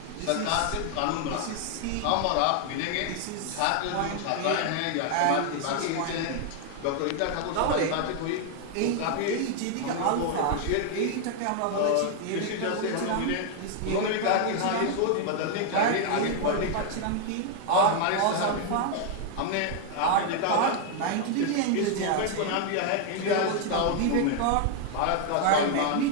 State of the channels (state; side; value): different; both; correlation 0.00